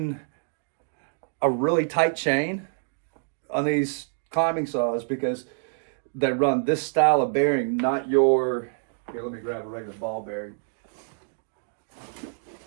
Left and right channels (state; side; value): silent; left; digital silence